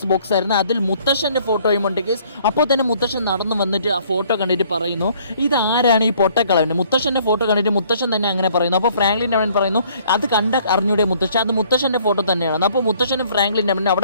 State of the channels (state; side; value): inverted; both; correlation -0.60